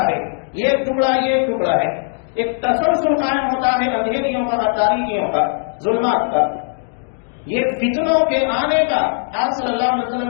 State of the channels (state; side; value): silent; right; digital silence